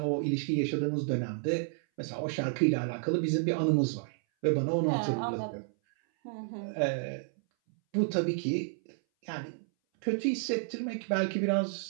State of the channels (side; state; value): left; silent; 57 dB below the other